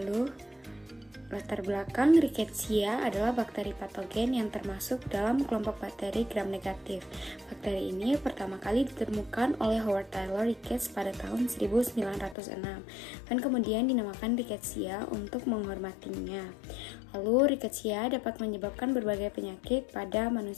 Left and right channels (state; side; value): drops out; right; at 12.4 s